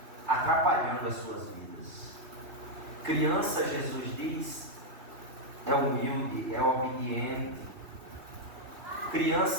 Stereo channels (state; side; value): late; left; 2.8 ms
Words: atrapalhando as suas vidas. Criança, Jesus diz, é humilde, é obediente.